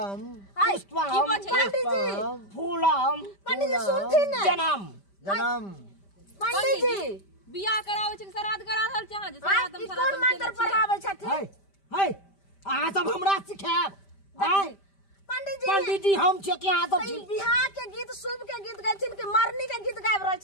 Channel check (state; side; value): late; right; 5.1 ms